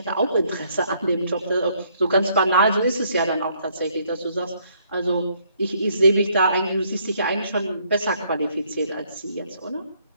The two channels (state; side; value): inverted; both; correlation -0.68